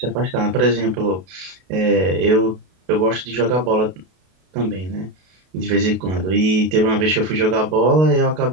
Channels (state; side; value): late; left; 32 ms